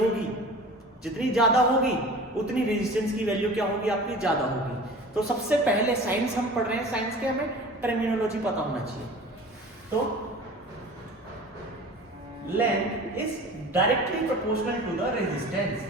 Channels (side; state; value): both; normal; correlation 0.40